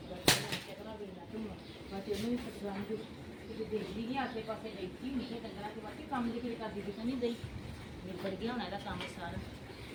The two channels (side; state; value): both; identical; correlation 1.00